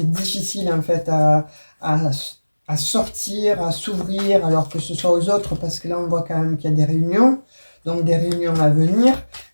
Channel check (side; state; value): both; inverted; correlation -1.00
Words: difficile en fait à, à sortir, à s'ouvrir, alors que ce soit aux autres, parce que là on voit quand même qu'il y a des réunions, donc des réunions à venir.